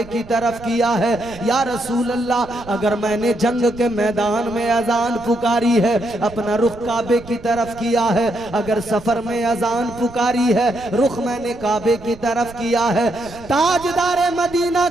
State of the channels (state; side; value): noise; right; rumble, 19 dB below the sound